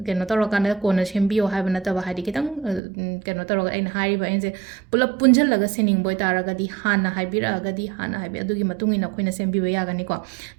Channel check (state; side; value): drops out; left; at 2.8 s